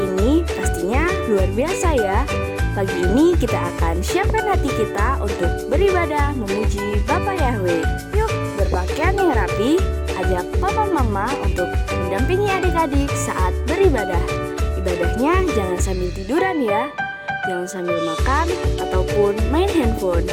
Pastinya luar biasa ya. Pagi ini kita akan siapkan hati kita untuk beribadah memuji Bapa Yahweh. Yuk berpakaian yang rapi, ajak papa mama untuk mendampingi adik-adik saat beribadah. Ibadahnya jangan sambil tiduran ya, jangan sambil makan ataupun main handphone.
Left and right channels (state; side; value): identical; both; correlation 1.00